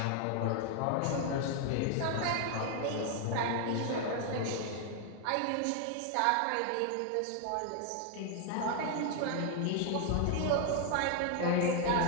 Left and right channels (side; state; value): both; different; correlation 0.00